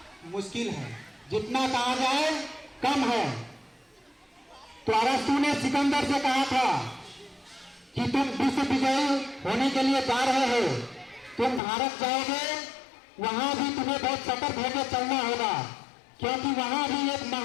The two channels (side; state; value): right; drops out; at 11.6 s